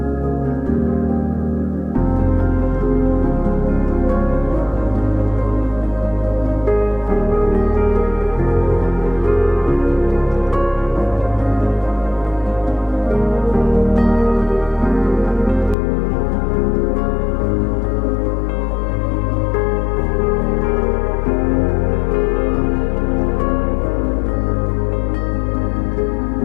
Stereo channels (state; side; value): drops out; right; at 15.8 s